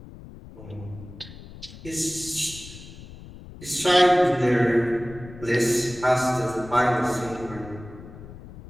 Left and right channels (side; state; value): left; noise; rumble, 16 dB below the sound